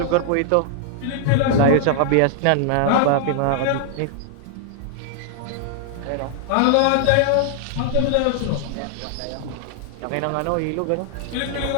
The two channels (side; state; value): both; different; correlation -0.01